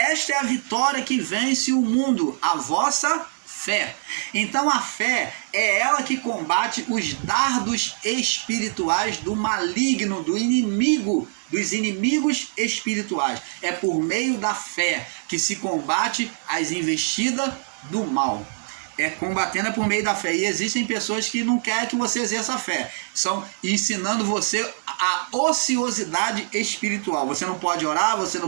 é a vitória que vence o mundo, a vossa fé. Então a fé é ela que combate os dardos espirituais do maligno, do inimigo, dos inimigos espirituais. É por meio da fé que se combate as investidas do mal. Combatendo por meio da fé. E existem pessoas que não querem que você exerça a fé. Estão ensinando você a ociosidade espiritual. Você não pode orar, você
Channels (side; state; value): left; silent; digital silence